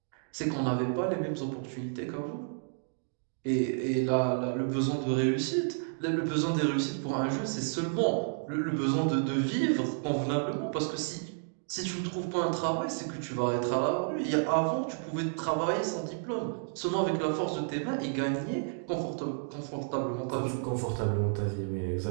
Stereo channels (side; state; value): left; silent; digital silence